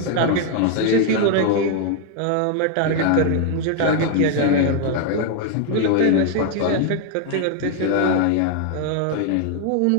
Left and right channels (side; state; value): both; different; correlation 0.00